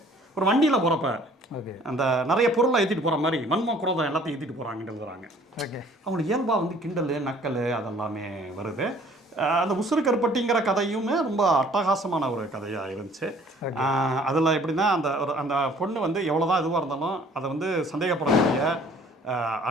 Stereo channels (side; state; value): both; normal; correlation 0.55